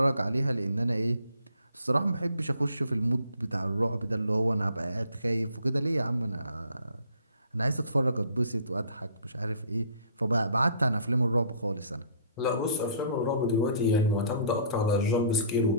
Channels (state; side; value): inverted; both; correlation -0.55